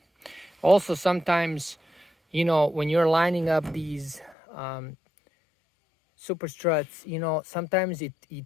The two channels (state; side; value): drops out; right; at 4.4 s